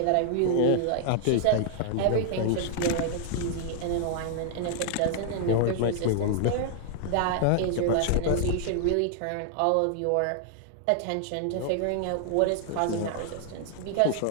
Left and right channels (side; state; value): both; different; correlation -0.01